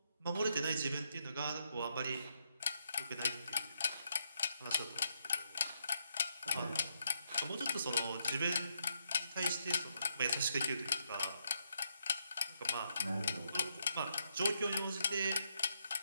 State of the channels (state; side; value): inverted; both; correlation -0.78